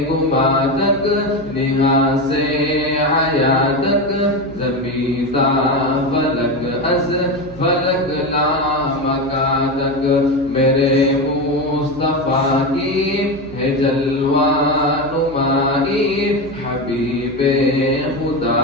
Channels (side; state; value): right; noise; hum, 18 dB below the sound